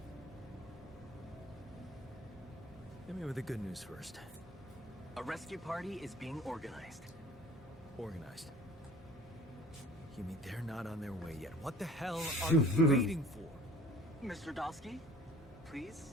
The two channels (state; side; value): normal; both; correlation 0.48